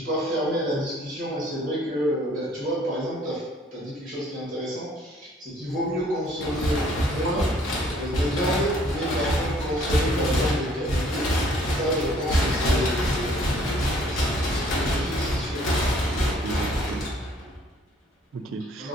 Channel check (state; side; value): normal; both; correlation 0.60